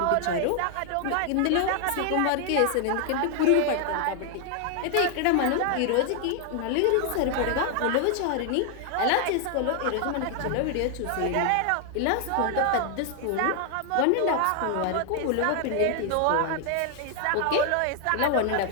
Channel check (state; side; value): different; both; correlation 0.00